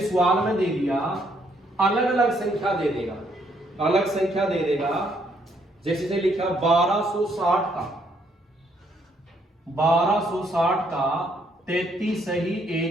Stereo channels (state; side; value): normal; both; correlation 0.70